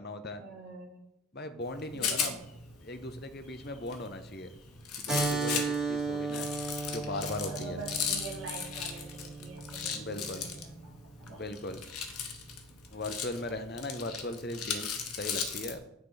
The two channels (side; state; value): both; normal; correlation 0.37